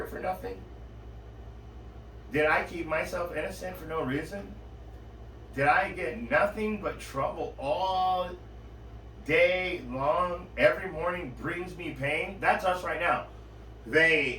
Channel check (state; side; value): identical; both; correlation 1.00